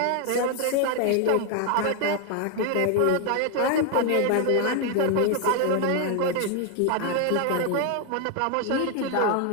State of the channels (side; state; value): both; different; correlation 0.01